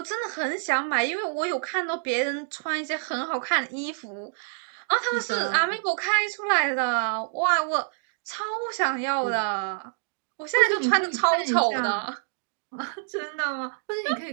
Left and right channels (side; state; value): left; silent; digital silence